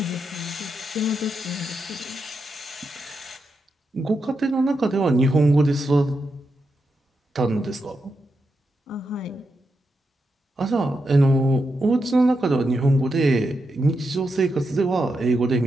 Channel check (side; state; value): both; normal; correlation 0.85